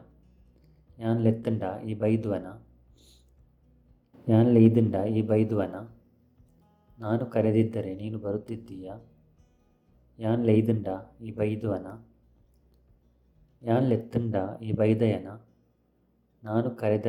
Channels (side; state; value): both; identical; correlation 1.00